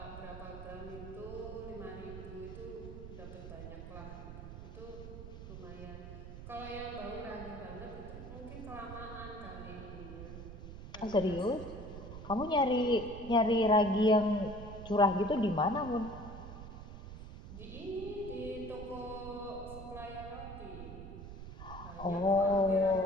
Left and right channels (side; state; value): right; noise; rumble, 11 dB below the sound